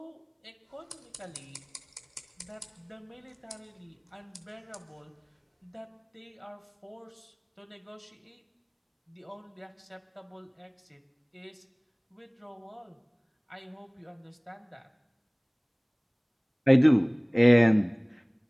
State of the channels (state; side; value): identical; both; correlation 1.00